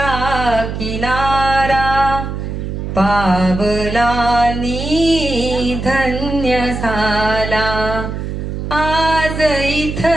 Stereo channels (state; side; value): noise; right; hum, 5 dB below the sound